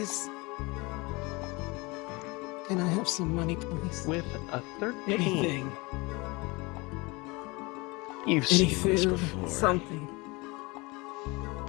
Can I have some money, please? With a 13. Anything. You've Any seen this food, before. something.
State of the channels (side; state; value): right; quieter; 25.3 dB